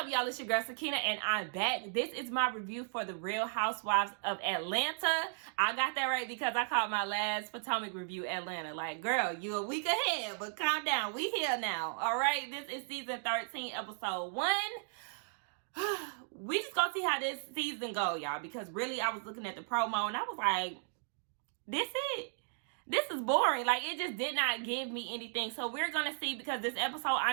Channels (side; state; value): left; silent; digital silence